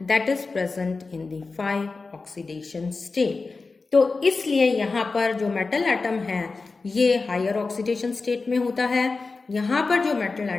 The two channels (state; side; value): quieter; right; 4.0 dB